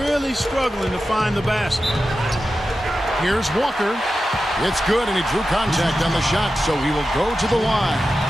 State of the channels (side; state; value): both; normal; correlation 0.92